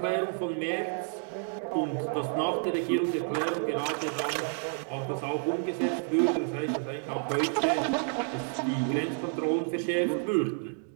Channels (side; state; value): left; silent; 56 dB below the other